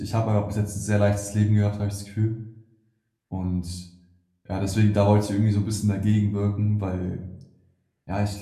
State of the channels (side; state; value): both; identical; correlation 1.00